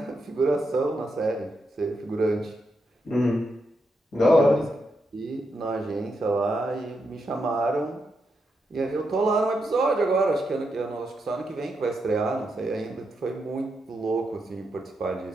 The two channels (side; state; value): both; normal; correlation 0.83